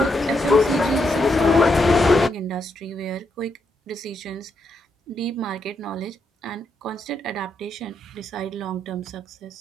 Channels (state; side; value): normal; both; correlation 0.80